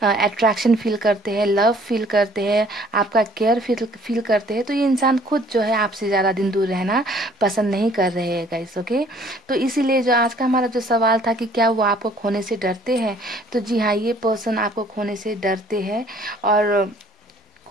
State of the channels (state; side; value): normal; both; correlation 0.57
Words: अट्रैक्शन फील करते हैं, लव फील करते हैं, आपका केयर फील करते हैं। तो ये इंसान खुद जो है आपसे ज़्यादा दिन दूर रहना पसंद नहीं कर रहे हैं गाइस। ओके, तो इसीलिए जो आज का हमारा जो सवाल था कि क्या वो आपको खोने से डरते हैं, तो जी हाँ, ये पर्सन आपको खोने से डरते हैं। और